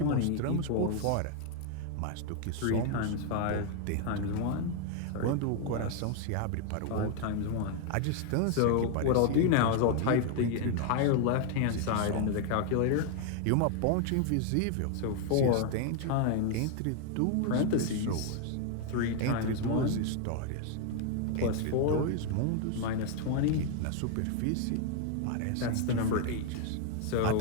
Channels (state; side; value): different; both; correlation 0.00